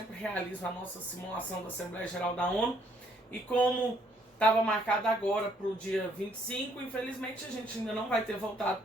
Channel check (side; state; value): both; normal; correlation 0.67